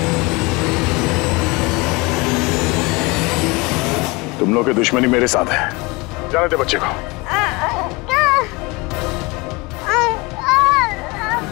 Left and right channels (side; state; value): right; quieter; 25.3 dB